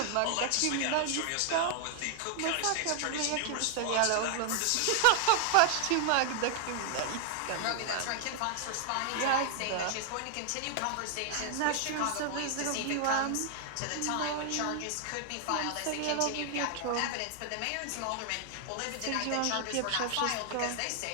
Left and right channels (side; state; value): both; different; correlation 0.00